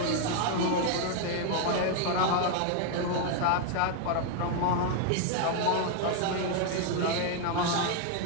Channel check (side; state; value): both; different; correlation 0.00